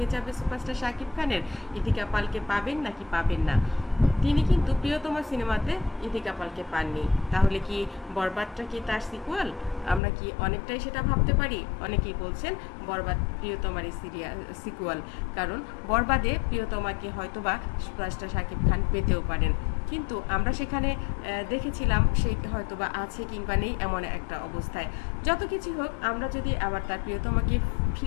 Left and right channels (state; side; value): drops out; right; at 10.0 s